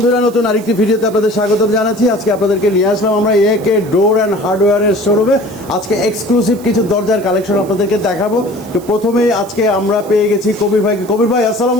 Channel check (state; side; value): noise; right; hiss, 21 dB below the sound